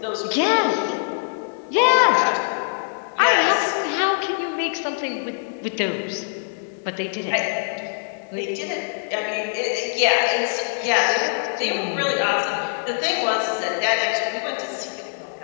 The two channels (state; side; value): silent; right; digital silence